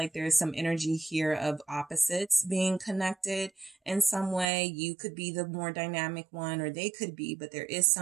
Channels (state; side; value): drops out; left; at 4.5 s